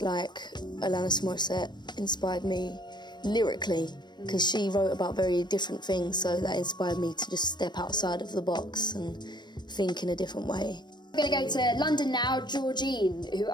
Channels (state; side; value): late; right; 0.21 ms